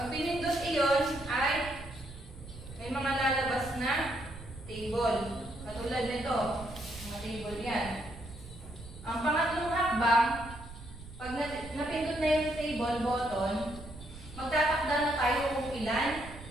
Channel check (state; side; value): noise; right; rumble, 15 dB below the sound